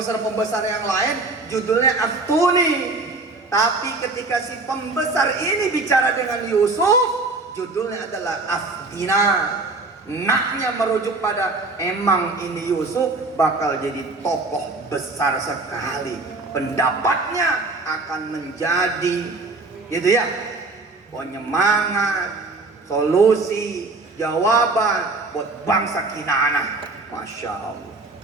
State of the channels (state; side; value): quieter; left; 3.4 dB